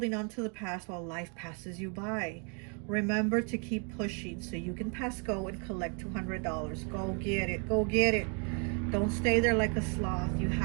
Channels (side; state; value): left; quieter; 38.3 dB